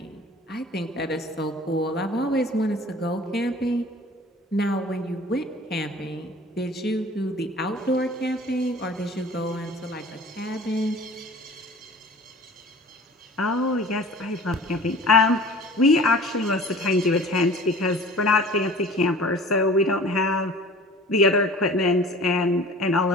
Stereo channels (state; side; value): normal; both; correlation 0.44